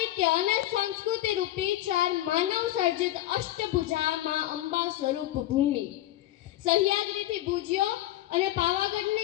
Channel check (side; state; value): right; quieter; 14.9 dB